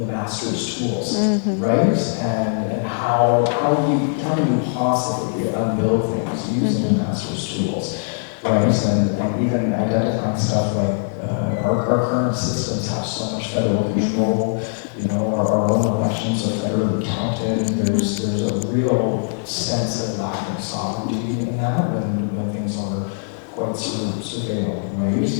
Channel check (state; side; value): silent; right; digital silence